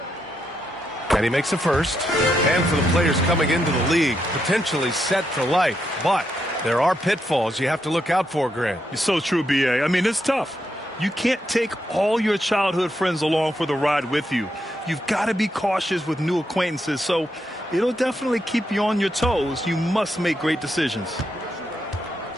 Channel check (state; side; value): normal; both; correlation 0.81